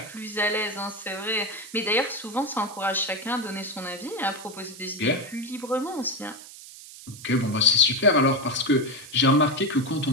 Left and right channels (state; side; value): noise; right; hiss, 16 dB below the sound